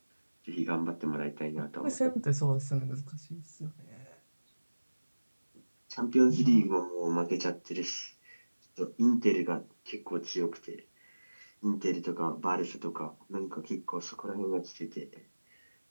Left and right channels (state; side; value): inverted; both; correlation -1.00